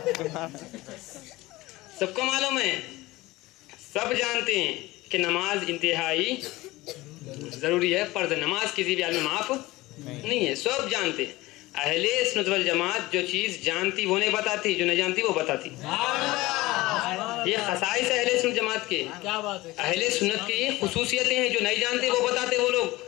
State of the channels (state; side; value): quieter; right; 19.4 dB